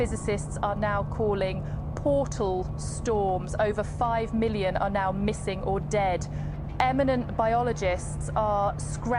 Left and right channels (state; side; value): identical; both; correlation 1.00